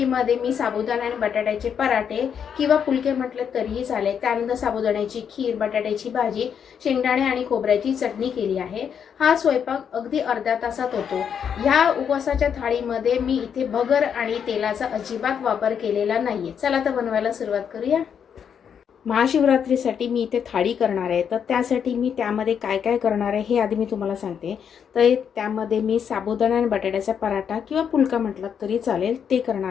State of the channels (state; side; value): quieter; right; 7.7 dB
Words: मी साबुदाणा आणि बटाट्याचे पराठे किंवा फुलके म्हटले तरीही चालेल, त्यानंतर साबुदाण्याची खीर, बटाट्याची भाजी, शेंगदाणे आणि खोबऱ्याची चटणी केली आहे। हा स्वयंपाक अगदी अर्ध्या तासात होतो। ह्या उपवासाच्या थाळीमध्ये मी इथे भगर आणि तेलाचा अजिबात वापर केलेला नाहीये। चला तर बनवायला सुरुवात करूया। महाशिवरात्रीसाठी मी इथे थाळी करणार आहे, तर त्यासाठी मी त्यामध्ये काय काय करणार आहे हे आधी मी तुम्हाला सांगते। तर त्यामध्ये मी साबुदाणा आणि बटाट्याचा पराठा किंवा फुलका म्हटलात तरी चालेल ते